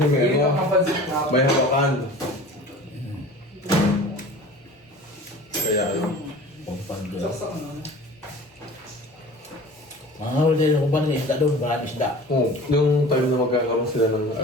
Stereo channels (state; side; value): normal; both; correlation 0.41